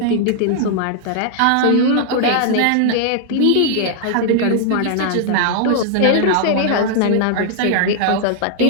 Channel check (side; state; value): both; different; correlation -0.01